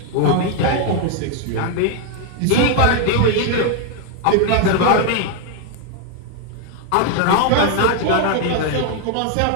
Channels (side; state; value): both; different; correlation 0.01